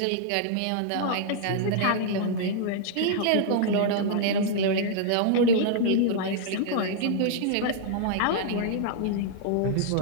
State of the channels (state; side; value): different; both; correlation -0.01